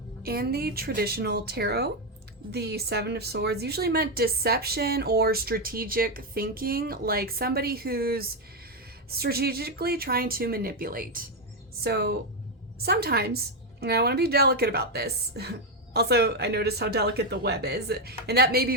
In the traditional tarot, the 7 of swords usually meant deception or strategic thinking, like somebody who's strategically trying to manipulate. So sometimes, and I want to be delicate about this, also I noticed how delicate the web is, and that may be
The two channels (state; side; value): normal; both; correlation 0.05